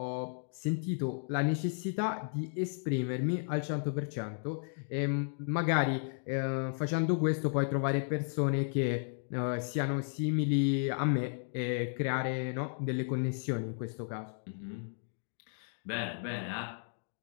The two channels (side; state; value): right; silent; digital silence